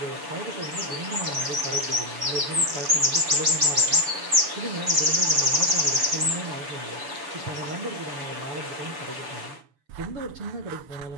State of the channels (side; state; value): left; late; 7.0 ms